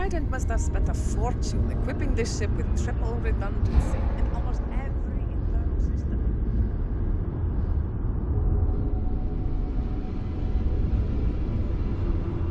must have spent a fortune equipping this ship with triple redundancy in almost every internal system.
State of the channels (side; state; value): both; identical; correlation 1.00